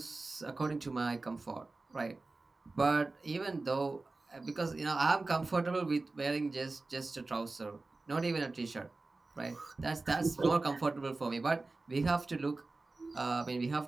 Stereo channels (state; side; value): quieter; left; 3.4 dB